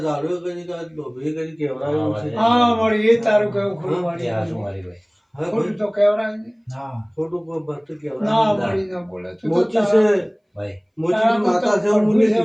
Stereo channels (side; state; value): both; identical; correlation 1.00